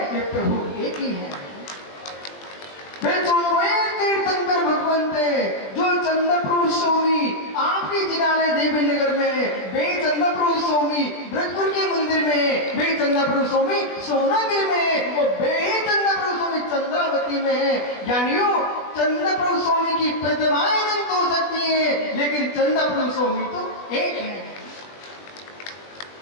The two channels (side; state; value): right; late; 20 ms